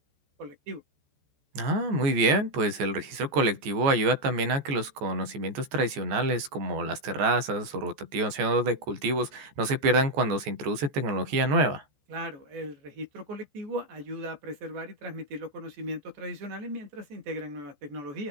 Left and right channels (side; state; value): left; late; 14 ms